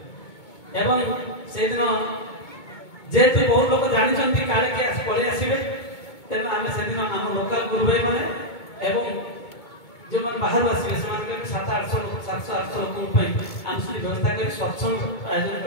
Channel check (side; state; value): right; late; 2.2 ms